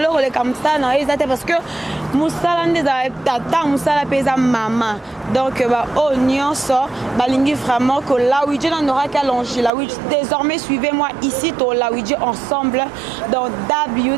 le comme ça na ezate parce que musalande za tata musala pesa mama donc ba oignon so balingi vraiment que Lawitch na Nora Kalonji-Lawitch désormais suivez-moi ici to Lawitch ensemble dans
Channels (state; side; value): drops out; left; at 9.7 s